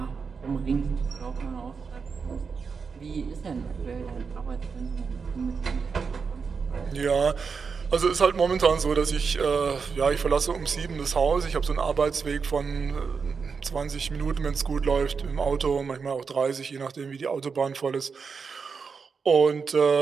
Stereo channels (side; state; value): left; quieter; 5.5 dB